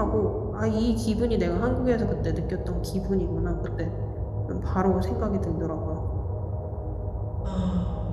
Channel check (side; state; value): both; identical; correlation 1.00